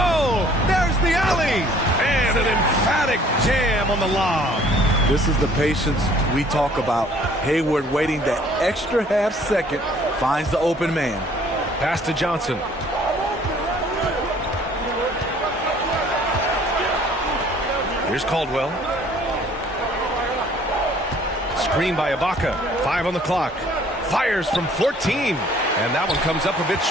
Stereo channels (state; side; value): normal; both; correlation 0.57